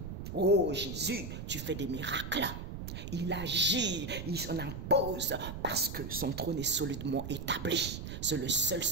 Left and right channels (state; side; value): noise; right; rumble, 7 dB below the sound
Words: oh Jésus, tu fais des miracles. Il agit, il s'en impose parce que son trône est solidement établi. C'est le seul,